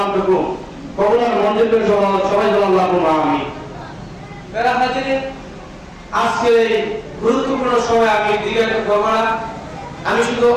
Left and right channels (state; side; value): identical; both; correlation 1.00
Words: কবুলার মঞ্জুর করে সবাই বলেন আল্লাহুম্মা আমিন। প্রিয় হাজিরিন, আজকে এই গুরুত্বপূর্ণ সময় আমি দীর্ঘায়িত করব না, আমি শুধু